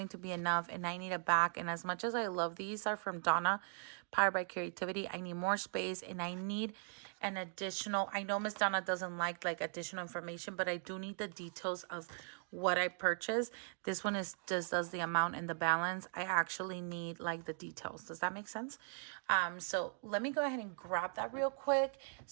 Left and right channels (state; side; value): silent; left; 52 dB below the other